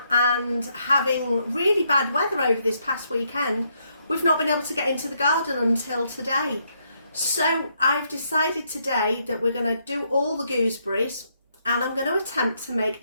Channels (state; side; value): inverted; both; correlation -0.75